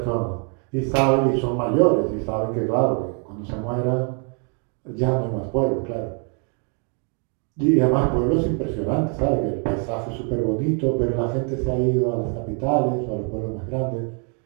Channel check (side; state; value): left; quieter; 39.6 dB